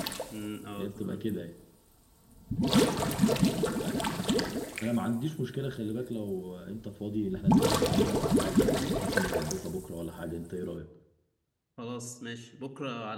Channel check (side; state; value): both; identical; correlation 1.00